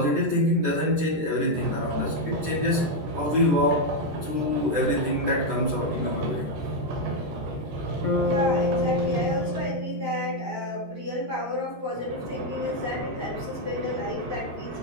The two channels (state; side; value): late; left; 13 ms